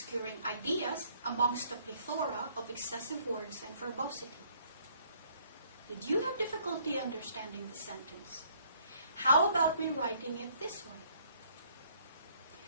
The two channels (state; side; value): inverted; both; correlation -0.63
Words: ideas amongst a plethora of excessive words and verbosity. Did you have difficulty understanding the sentence? How about rewriting it this way?